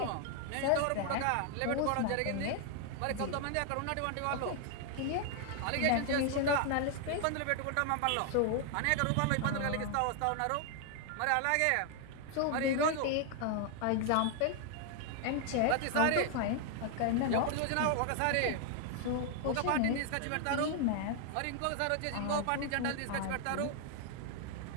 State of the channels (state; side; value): different; both; correlation 0.00